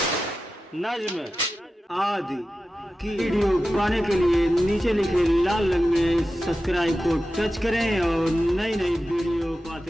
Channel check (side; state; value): both; normal; correlation 0.93